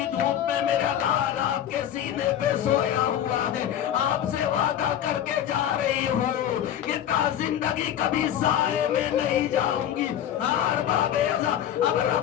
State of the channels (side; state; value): right; quieter; 10.6 dB